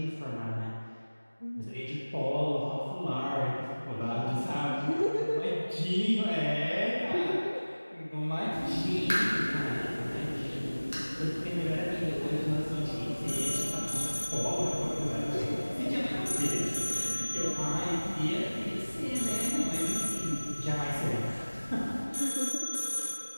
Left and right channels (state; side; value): inverted; both; correlation -1.00